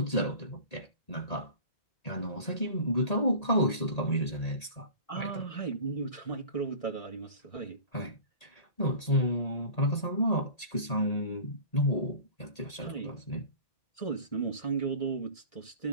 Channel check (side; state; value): right; late; 1.8 ms